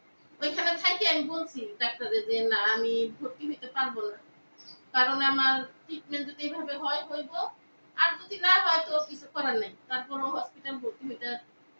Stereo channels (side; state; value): both; inverted; correlation -1.00